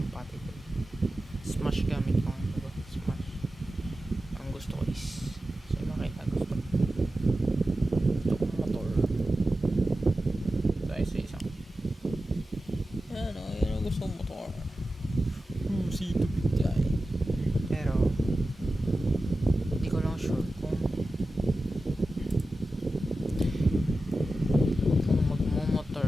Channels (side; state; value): both; normal; correlation 0.93